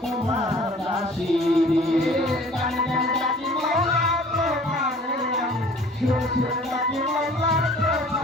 তোমার দাসী গানে গানে ডাকি মাওলা তোমারে আমি শুনে শুনে ডাকি মাওলা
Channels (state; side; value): normal; both; correlation 0.50